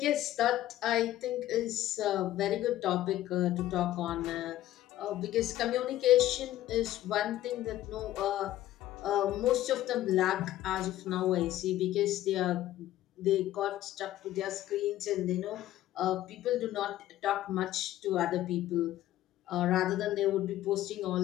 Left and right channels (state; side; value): quieter; right; 14.0 dB